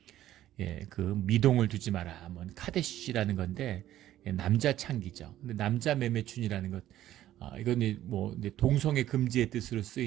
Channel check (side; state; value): left; quieter; 13.1 dB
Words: 그 미동을 두지 마라. 뭐 카데시라는 건데 남자 창기죠. 근데 남자 매매춘이라는 것, 이건 뭐 동성애 금지의 뜻으로